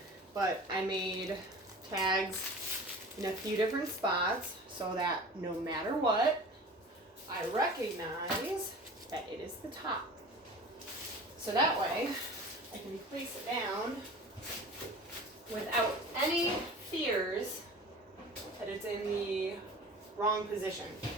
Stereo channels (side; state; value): both; normal; correlation 0.38